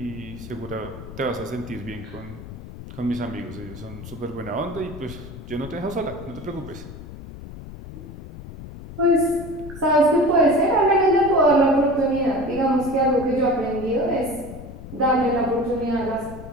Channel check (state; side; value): noise; left; rumble, 13 dB below the sound